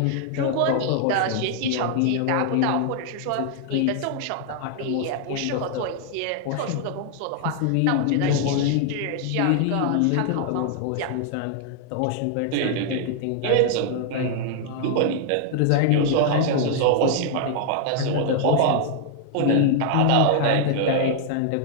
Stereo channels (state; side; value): different; both; correlation 0.00